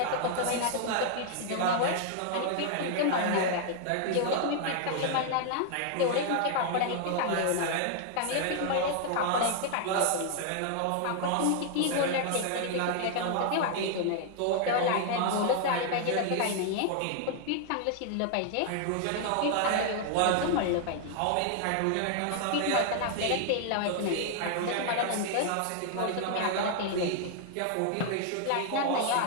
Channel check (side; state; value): both; different; correlation 0.00